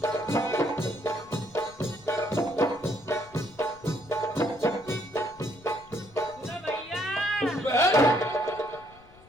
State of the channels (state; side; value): noise; left; rumble, 25 dB below the sound